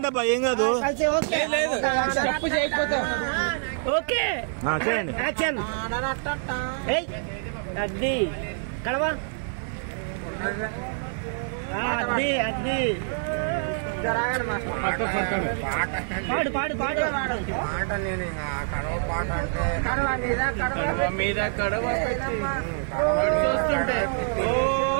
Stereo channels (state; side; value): silent; left; 57 dB below the other